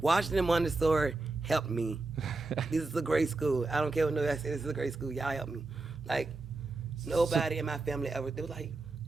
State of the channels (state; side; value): quieter; left; 3.4 dB